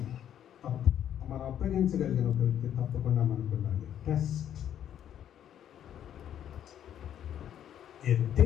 మనం అప్పగించగలిగిన ఒక వ్యక్తి తప్పకుండా మనకు ఉండాలి. Test a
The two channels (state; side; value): quieter; right; 10.1 dB